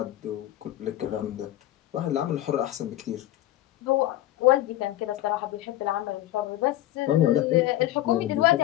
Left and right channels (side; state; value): right; quieter; 14.4 dB